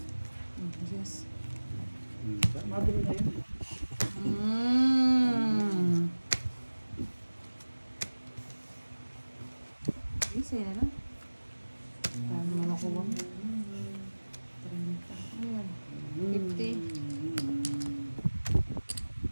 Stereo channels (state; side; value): inverted; both; correlation -1.00